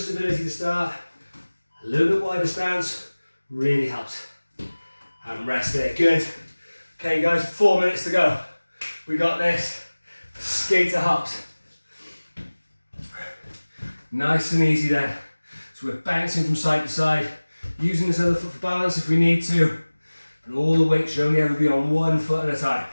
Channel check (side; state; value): both; inverted; correlation -1.00